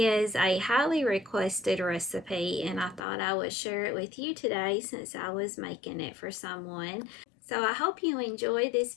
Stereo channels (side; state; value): right; drops out; at 3.0 s